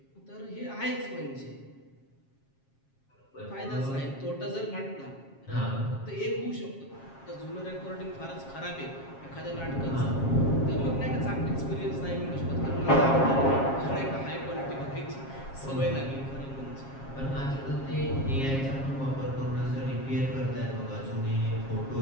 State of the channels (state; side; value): late; right; 7.4 ms